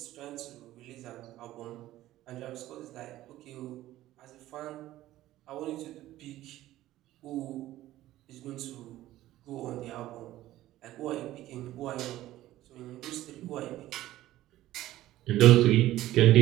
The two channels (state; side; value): quieter; left; 15.0 dB